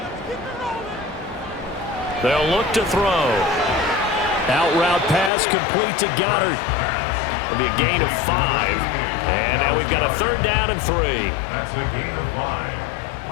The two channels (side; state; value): right; drops out; at 5.3 s